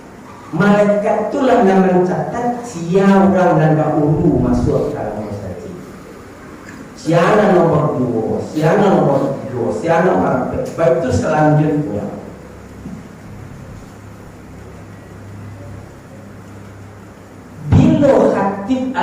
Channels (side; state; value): both; identical; correlation 1.00